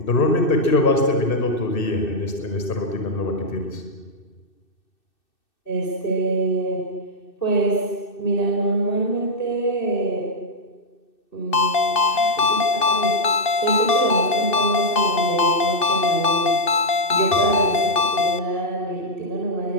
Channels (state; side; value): late; right; 2.6 ms